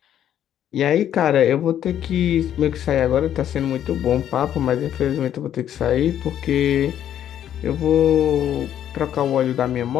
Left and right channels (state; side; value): quieter; right; 10.5 dB